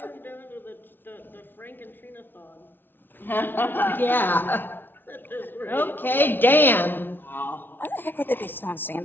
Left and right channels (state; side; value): late; right; 0.098 ms